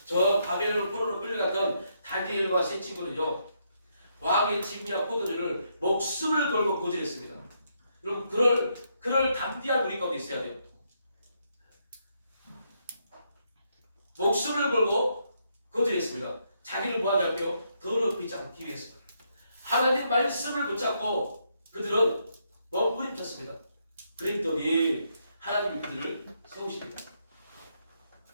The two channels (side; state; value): both; inverted; correlation -0.77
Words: 저 바벨론 포로로 끌려갔던 다니엘과 세 친구는요, 왕의 짐이나 포도주를 목숨을 걸고 고지했습니다. 여러분 그럴 담대한 우리 가운데 있어야 돼요. 목숨을 걸고 거절했습니다. 자기를 뭐하지 않고요? 더럽히지 않기 위해서. 하나님 말씀을 붙잡고 그들은 몸부림쳤습니다. 그랬더니 하나님이 그들을 세우십니다.